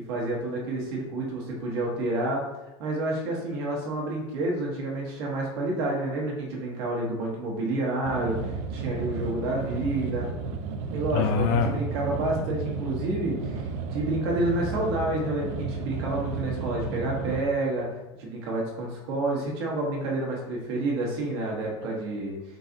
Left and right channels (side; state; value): both; normal; correlation 0.30